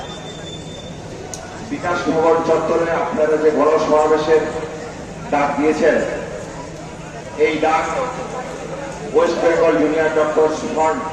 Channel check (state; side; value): identical; both; correlation 1.00